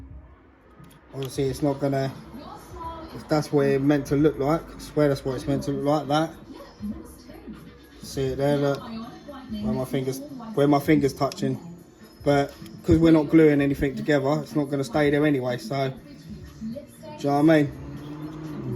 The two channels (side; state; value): both; identical; correlation 1.00